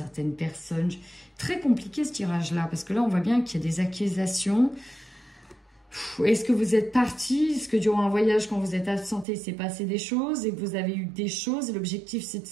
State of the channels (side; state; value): left; drops out; at 9.2 s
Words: personne. Très compliqué ce tirage-là, parce que là, on voit bien qu'il y a des accusations. Est-ce que vous êtes parti? Est-ce que durant un voyage, quand vous êtes absenté, il s'est passé des choses et que vous avez eu des choses? L'objectif, c'est de